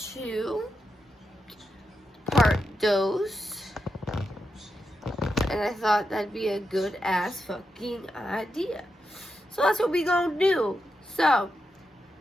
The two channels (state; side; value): normal; both; correlation 0.87